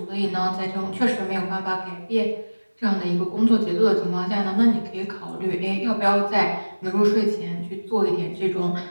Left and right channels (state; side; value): inverted; both; correlation -1.00